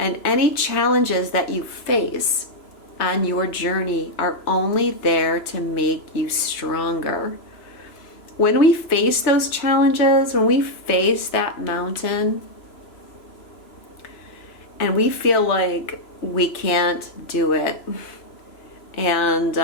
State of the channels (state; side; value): late; right; 3.0 ms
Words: any challenges that you face on your journey are only there to make you stronger. When we face those challenges, when we face that mountain, and we feel like we can't do it,